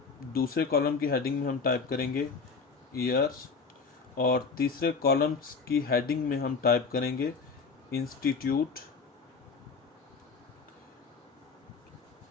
दूसरे कॉलम की हेडिंग में हम टाइप करेंगे ईयर्स, और तीसरे कॉलम्स की हेडिंग में हम टाइप करेंगे इंस्टीट्यूट,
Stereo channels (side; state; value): right; quieter; 5.0 dB